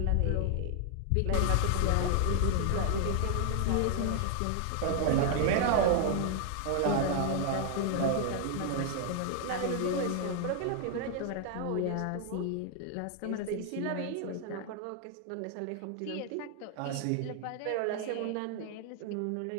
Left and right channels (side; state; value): both; different; correlation 0.00